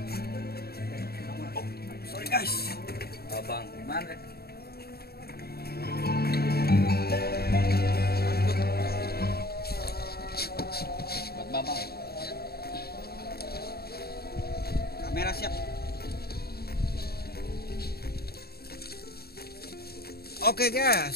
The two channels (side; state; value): right; late; 0.46 ms